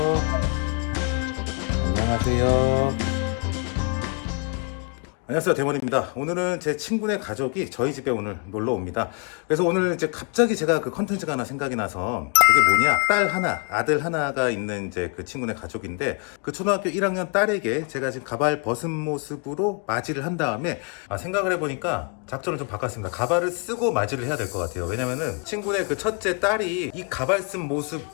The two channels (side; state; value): right; quieter; 36.6 dB